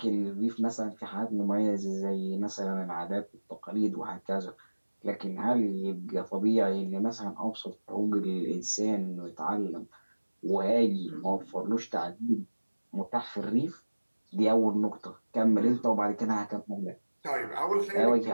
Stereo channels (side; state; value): both; inverted; correlation -1.00